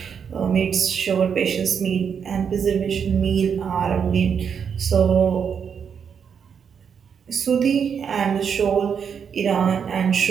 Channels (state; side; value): quieter; left; 7.1 dB